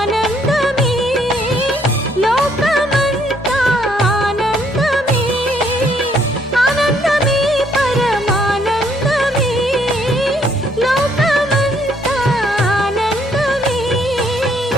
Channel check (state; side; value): normal; both; correlation 0.68